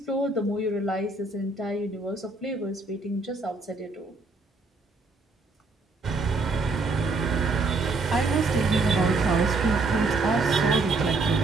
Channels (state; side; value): quieter; left; 3.5 dB